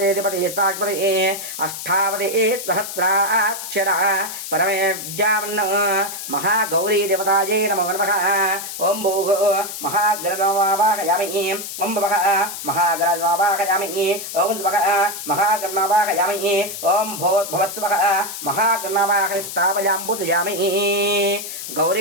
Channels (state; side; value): noise; left; hiss, 8 dB below the sound